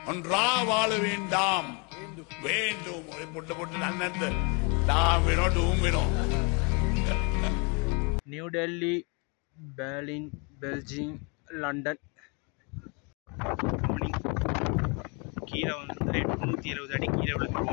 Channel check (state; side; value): quieter; right; 32.6 dB